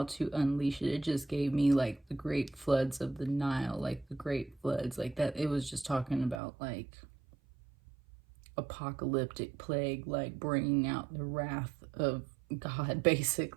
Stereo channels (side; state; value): left; drops out; at 6.4 s